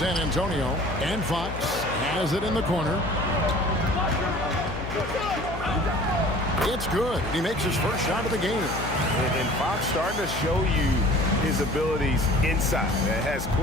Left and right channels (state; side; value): noise; left; hum, 9 dB below the sound